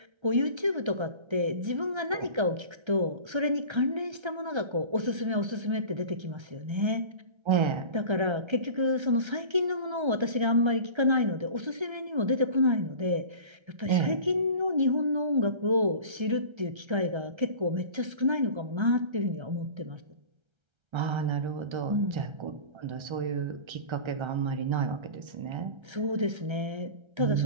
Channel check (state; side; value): late; left; 1.3 ms